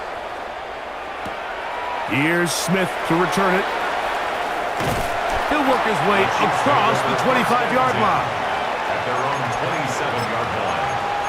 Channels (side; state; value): both; identical; correlation 1.00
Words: Here's Smith to return it. He'll work his way across the 25-yard line. At their own 27-yard line.